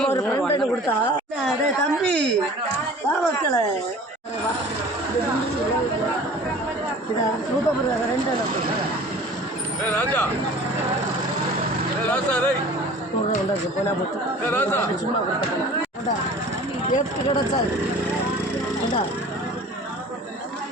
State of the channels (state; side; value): normal; both; correlation 0.44